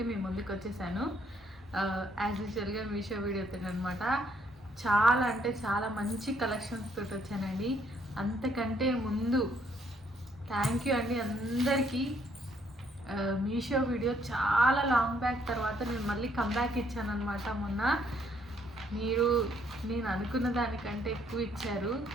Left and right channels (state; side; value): normal; both; correlation 0.68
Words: మీ ముందుకు వచ్చేసాను. యాజ్ యూజువల్గా మీషో వీడియోతో అనమాట. చాలా అంటే చాలా మంచి కలెక్షన్స్ తోటి వచ్చానండి. అంతకంటే ముందు థ్యాంక్ యూ అండి అందరికీ. మీషో వీడియో చాలా లాంగ్ బ్యాక్ తర్వాత నేను మళ్ళీ కమ్బ్యాక్ ఇచ్చాను అనమాట. మొన్న నేను అనుకున్న దానికంటే ఎక్కువ ఇచ్చారు.